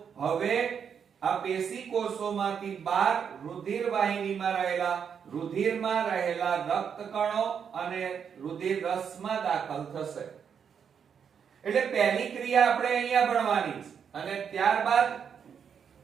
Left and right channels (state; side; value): quieter; left; 7.3 dB